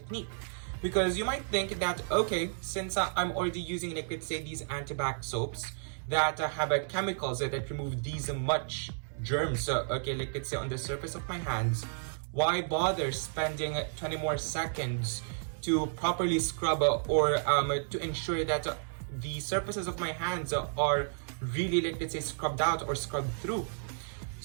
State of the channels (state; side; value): silent; left; digital silence